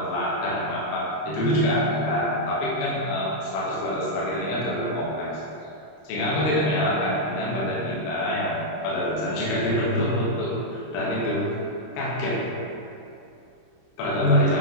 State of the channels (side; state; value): right; late; 26 ms